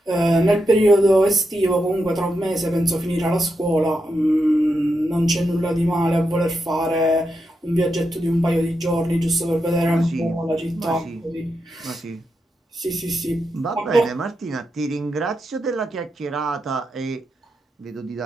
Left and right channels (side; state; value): both; normal; correlation 0.85